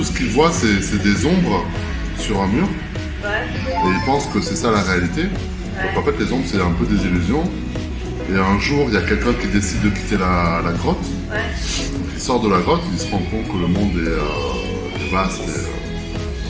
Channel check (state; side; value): identical; both; correlation 1.00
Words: ce qu'il voit, c'est des ombres sur un mur. Et il pense que c'est ça la réalité. Donc en fait, les ombres, c'est un peu des illusions. Et un jour, il y a quelqu'un qui décide de quitter la grotte. Donc, il sort de la grotte, il se rend compte que le monde est vaste